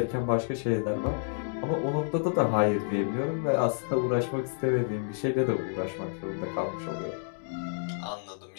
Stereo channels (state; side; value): silent; right; digital silence